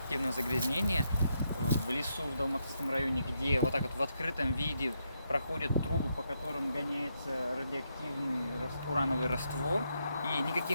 загрязнения в лесу в Долматовском районе, где вот так вот в открытом виде проходят трубы, по которым гоняется радиоактивный урановый раствор, и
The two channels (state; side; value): inverted; both; correlation -0.80